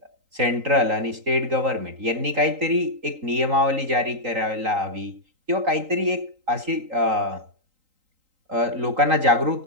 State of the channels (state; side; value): late; left; 3.8 ms